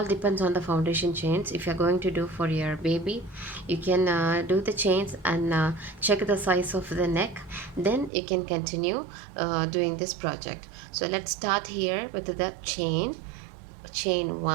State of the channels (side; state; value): left; drops out; at 8.1 s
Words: depends on the foundation chains. If you're going to do for your baby, you can do the chains and check the size of the neck, then you can continue doing this project. So let's start here with the chain